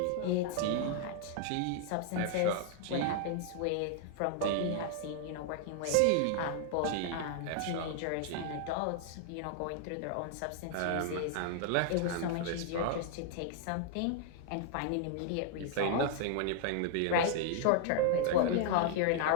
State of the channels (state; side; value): different; both; correlation 0.00